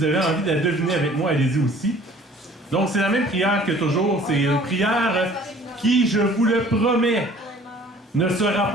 avez envie de la deviner avec moi, allez-y aussi. Donc, c'est la même prière que toujours. C'est une prière qui, je vous le promets, ne sera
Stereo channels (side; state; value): both; normal; correlation 0.51